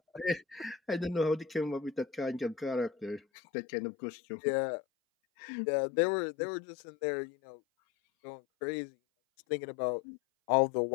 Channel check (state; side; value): drops out; right; at 3.2 s